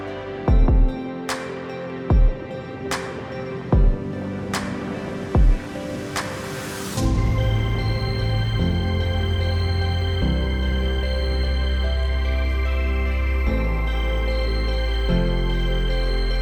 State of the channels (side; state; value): both; identical; correlation 1.00